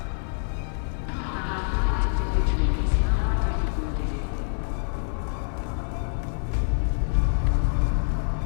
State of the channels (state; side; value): silent; right; digital silence